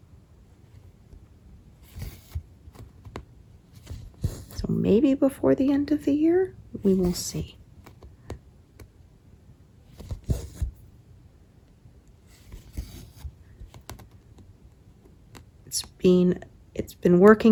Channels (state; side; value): identical; both; correlation 1.00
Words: So maybe before the end of the year, we will see. It's been